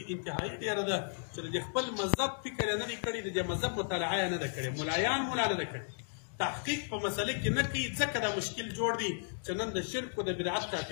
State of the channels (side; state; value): right; silent; digital silence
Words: انتهایي ډېره ده چې د خپل مذهب فکر یې نه دی کړی، د دې مذهب مطالعه یې نه ده کړې، ملایان مو نه ده کړې، تحقیق په مسله کې نه کوي، ځکه دا مشکل جوړ دی چې نن د شرک او د بدعت